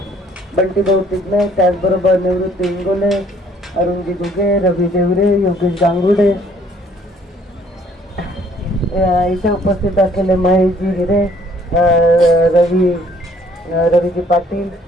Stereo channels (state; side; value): normal; both; correlation 0.61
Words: बंटी भाऊ तिगणे, त्याचबरोबर निवृत्ती इंगोले, अरुणजी घुगे, रवी देवरे, योगेश गांगुडे, इथे उपस्थित असलेले महेशजी हिरे, रवीजी पाटील,